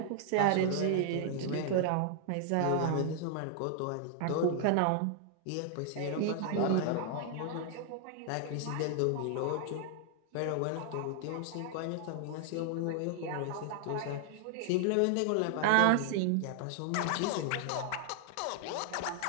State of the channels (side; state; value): both; different; correlation 0.00